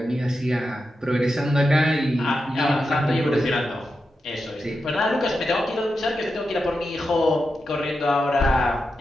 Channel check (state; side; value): normal; both; correlation 0.88